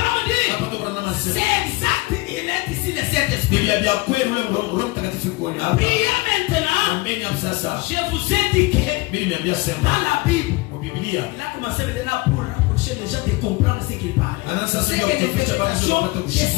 me dire, hapo kuna nama sema c'est exact, il est ici le Saint-Esprit. ni vya kweli ule Roho Mtakatifu kwa hapa. Priez maintenant. Ameni hapo sasa. Je vous ai dit que Mimi niambia sema dans la Bible, kwa Biblia il a commencé maintenant pour rapprocher les gens de comprendre ce qu'il parlait. C'est que l'interprétation de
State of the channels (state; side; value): quieter; right; 22.6 dB